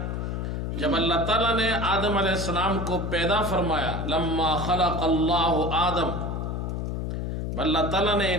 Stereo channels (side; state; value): left; noise; hum, 3 dB below the sound